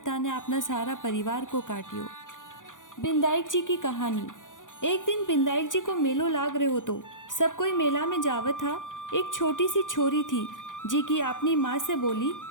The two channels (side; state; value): right; late; 0.88 ms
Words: ने अपना सारा परिवार को काटियो। बिंदाईक जी की कहानी। एक दिन बिंदाईक जी को मेलो लाग रहे हो तो सब कोई मेला में जावत था। एक छोटी सी छोरी थी जी की अपनी माँ से बोली